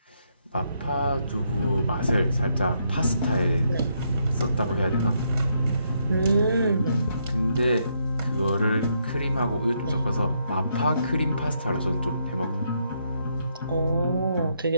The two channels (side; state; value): both; inverted; correlation -0.76